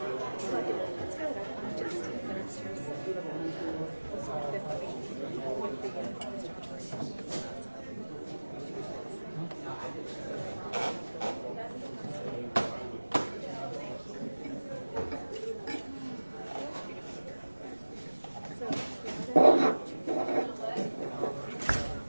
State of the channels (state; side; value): inverted; both; correlation -1.00